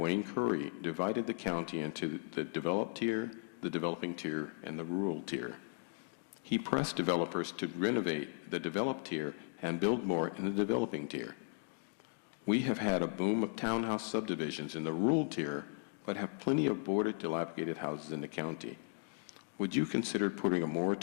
Curry, divided the county into the developed tier, the developing tier, and the rural tier. He pressed developers to renovate the developed tier and build more in the developing tier. We have had a boom of townhouse subdivisions in the rural tier, but have plenty of boarded, dilapidated houses in the county. Would you consider putting a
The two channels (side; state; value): right; silent; digital silence